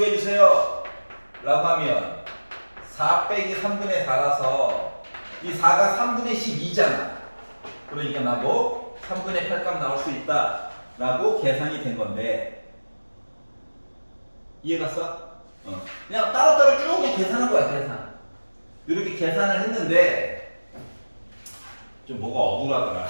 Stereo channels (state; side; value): inverted; both; correlation -1.00